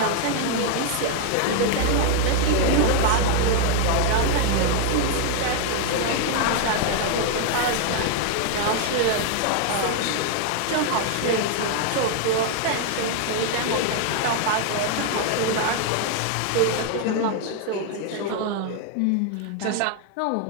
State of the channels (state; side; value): different; both; correlation 0.00